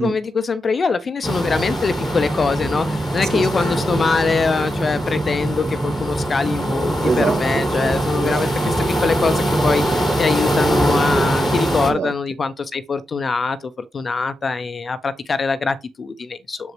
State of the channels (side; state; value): both; normal; correlation 0.87